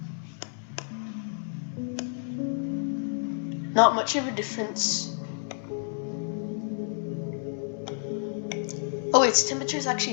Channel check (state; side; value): silent; right; 58 dB below the other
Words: Not much of a difference. Oh, its temperature is